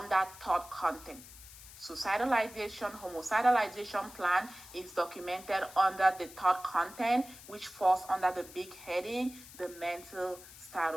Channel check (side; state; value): left; noise; hiss, 17 dB below the sound